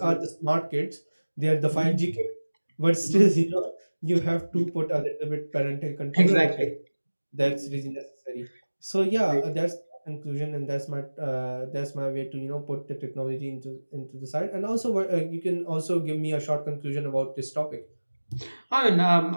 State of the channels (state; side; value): inverted; both; correlation -1.00